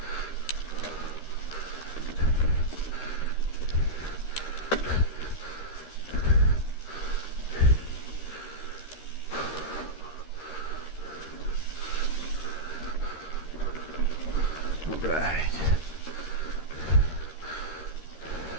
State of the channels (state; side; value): late; right; 13 ms